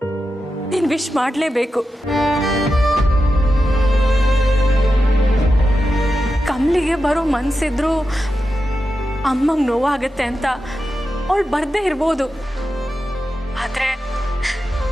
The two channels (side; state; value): both; normal; correlation 0.90